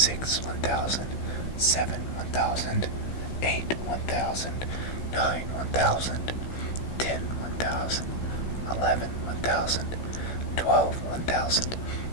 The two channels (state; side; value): late; right; 16 ms